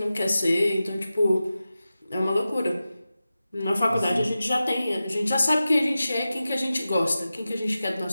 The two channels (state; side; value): inverted; both; correlation -0.94